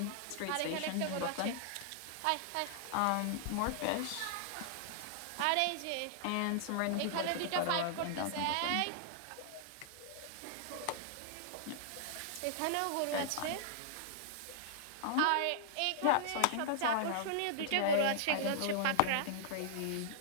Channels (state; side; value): different; both; correlation -0.01